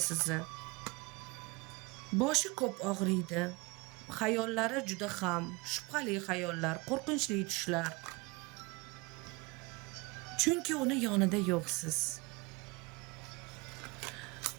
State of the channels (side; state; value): left; quieter; 25.8 dB